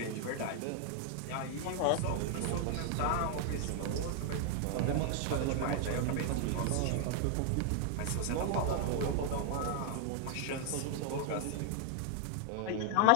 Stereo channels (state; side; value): different; both; correlation 0.00